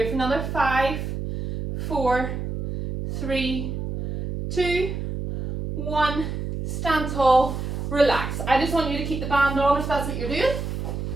for another 5, 4, 3, 2, 1. Stand tall. Relax. I just want you to keep the band on if that's what you're doing.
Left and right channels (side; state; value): right; noise; hum, 4 dB below the sound